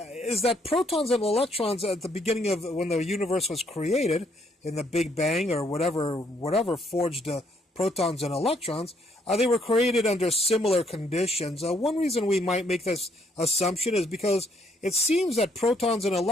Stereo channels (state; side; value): normal; both; correlation 0.70